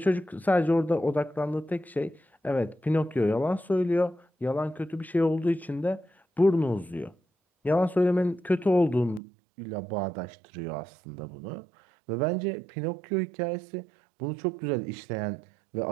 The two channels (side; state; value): left; drops out; at 9.2 s